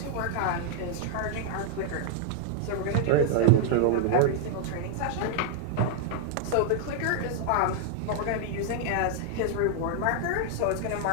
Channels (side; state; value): both; different; correlation 0.00